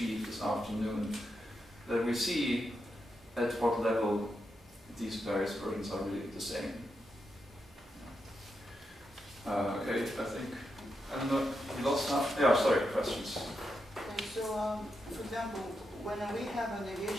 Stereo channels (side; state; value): both; normal; correlation 0.85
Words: this afternoon, that we see at what level these various versions are really the same. Okay, I don't know, we lost half? Yeah, sorry, questions. Okay, so, for example, when we have a